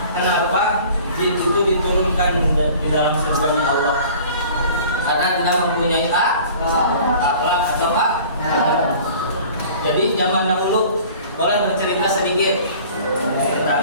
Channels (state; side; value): inverted; both; correlation -0.46